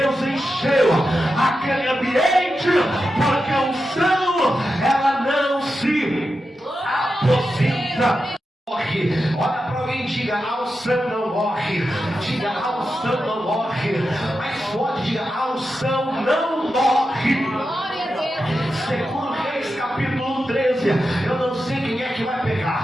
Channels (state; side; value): normal; both; correlation 0.89